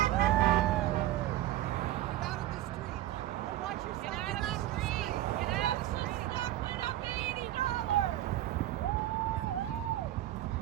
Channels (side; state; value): left; quieter; 14.1 dB